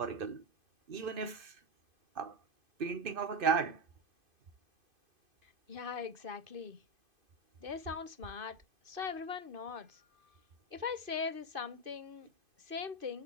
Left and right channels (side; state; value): left; late; 2.5 ms